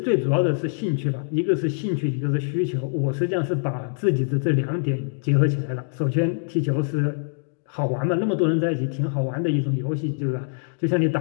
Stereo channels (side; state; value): right; silent; 63 dB below the other